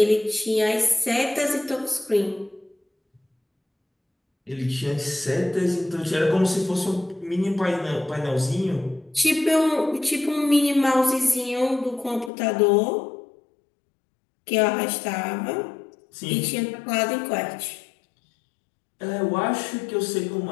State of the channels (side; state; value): right; drops out; at 12.3 s